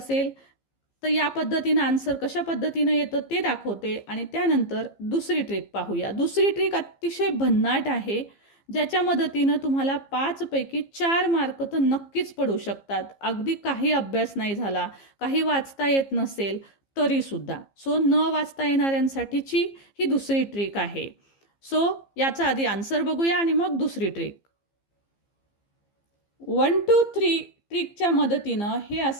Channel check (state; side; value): late; right; 15 ms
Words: तर या पद्धतीनं आन्सर कशा पद्धतीनं येतं ते दाखवते आणि त्यानंतर दुसरी ट्रिक पाहूया. दुसरी ट्रिक अतिशय भन्नाट आहे, ज्याच्या मदतीनं तुम्हाला 5 पैकी 4 मार्क तर नक्कीच पडू शकतात. अगदी काही अभ्यास नाही झाला, काही वाचता येत नसेल तरीसुद्धा. सो न वाचता येणाऱ्यांसाठीची ही दुसरी ट्रिक आहे. सो याचा आधी आन्सर बघूया आणि मग दुसरी ट्रिक. 1 2 3 ट्रिकच्या मदतीनं हे